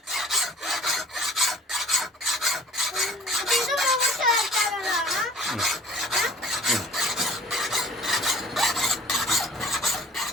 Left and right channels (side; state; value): both; normal; correlation 0.49